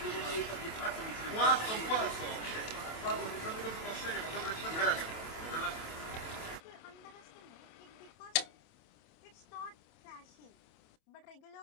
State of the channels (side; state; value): right; late; 27 ms